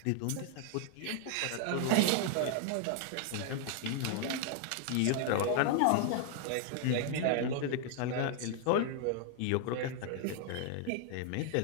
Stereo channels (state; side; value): different; both; correlation 0.00